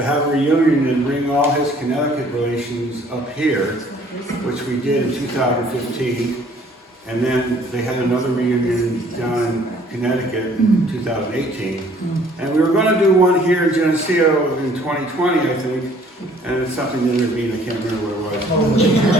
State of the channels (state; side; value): normal; both; correlation 0.58